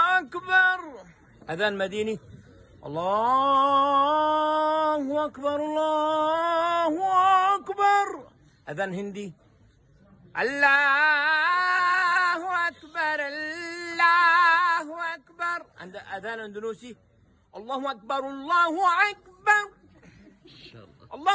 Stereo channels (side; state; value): both; identical; correlation 1.00